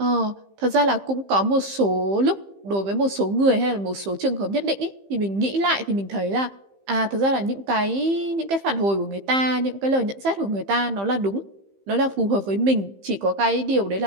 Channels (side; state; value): left; late; 15 ms